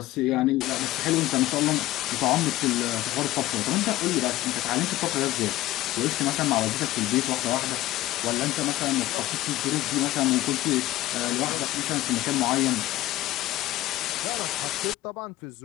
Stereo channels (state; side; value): quieter; right; 16.4 dB